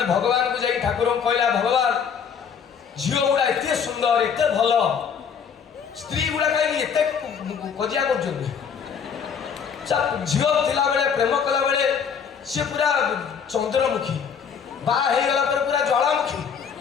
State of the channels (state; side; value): quieter; right; 6.9 dB